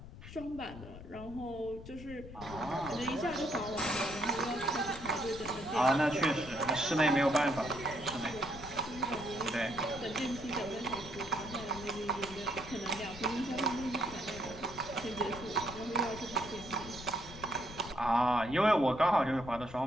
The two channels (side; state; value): left; noise; rumble, 14 dB below the sound